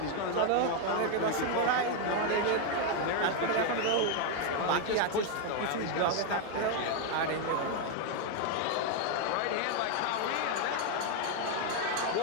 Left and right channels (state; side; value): different; both; correlation 0.01